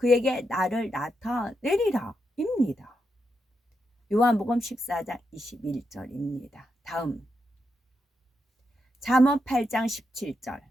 나를 나타내리라 입니다. 요한복음 14장 21절입니다. 다음 잠언 8장 17절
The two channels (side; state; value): both; normal; correlation 0.84